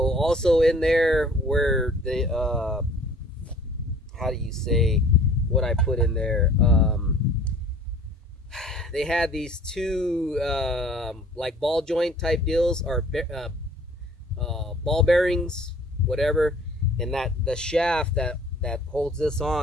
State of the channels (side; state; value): both; normal; correlation 0.51